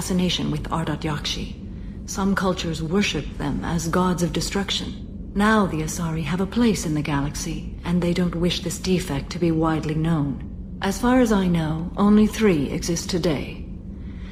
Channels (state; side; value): identical; both; correlation 1.00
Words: with Ardat Yakshi. Some cultures worshipped them as gods of destruction. Now the Asari have a place in the galaxy, and they don't wish this defect to be widely known. As far as I know, only 3 exist today.